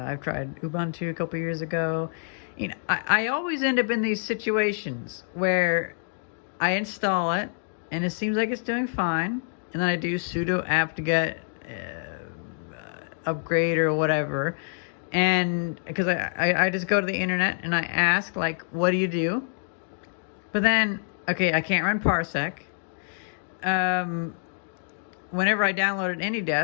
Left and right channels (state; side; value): silent; right; digital silence